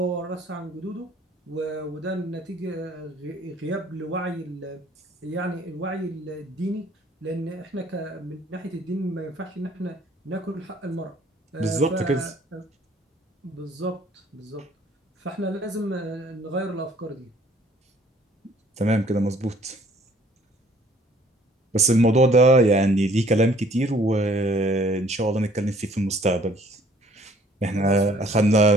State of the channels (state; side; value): normal; both; correlation 0.58